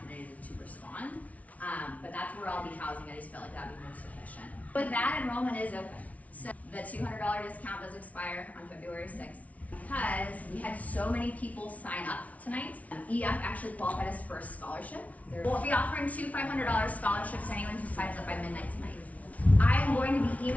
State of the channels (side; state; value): right; late; 0.068 ms